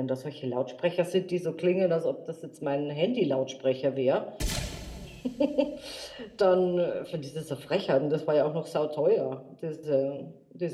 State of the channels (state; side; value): identical; both; correlation 1.00